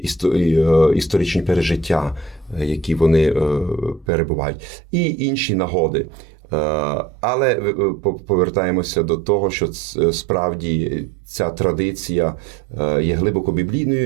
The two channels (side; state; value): left; drops out; at 4.0 s